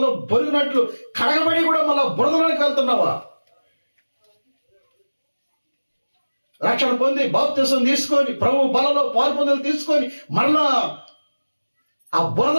బొరిగినట్లు కడగబడి కూడా మళ్ళా బురదలోకి వెళ్తున్నావా? రక్షణ పొంది బాప్తిసం తీసుకొని ప్రభు బలలో పాల్పొందలు తీసుకొని మరలా ఆ బురద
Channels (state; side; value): inverted; both; correlation -1.00